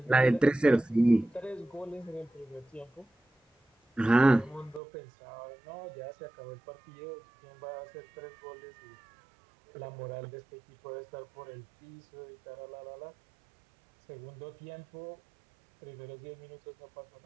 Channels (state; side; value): drops out; left; at 4.8 s